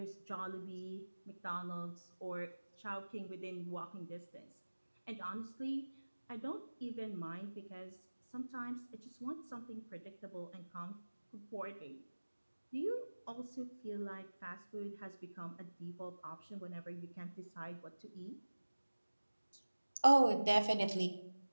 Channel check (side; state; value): both; inverted; correlation -1.00